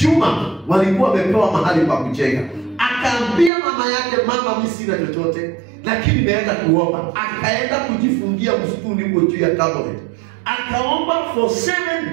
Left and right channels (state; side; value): drops out; left; at 3.5 s